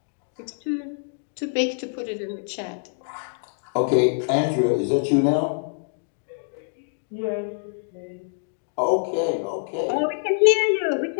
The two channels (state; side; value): silent; right; digital silence